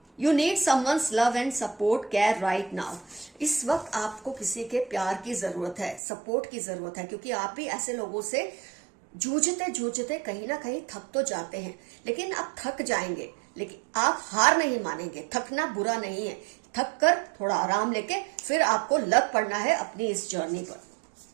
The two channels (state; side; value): drops out; left; at 6.0 s